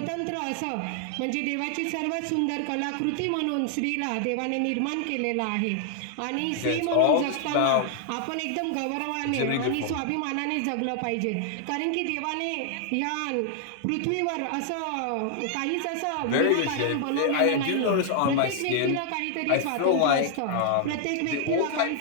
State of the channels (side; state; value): both; different; correlation 0.00